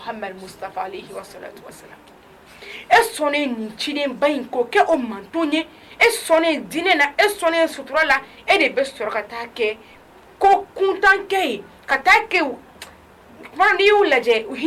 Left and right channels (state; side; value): identical; both; correlation 1.00